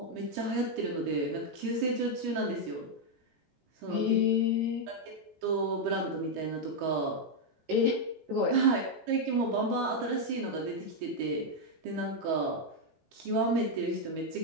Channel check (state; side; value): late; left; 19 ms